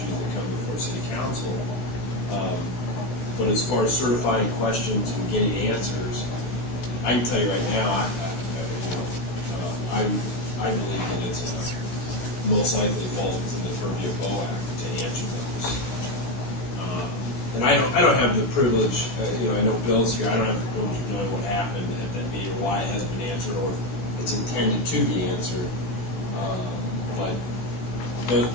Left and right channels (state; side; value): late; right; 16 ms